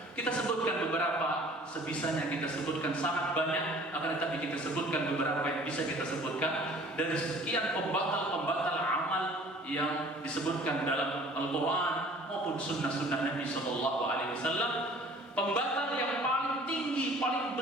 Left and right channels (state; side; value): normal; both; correlation 0.50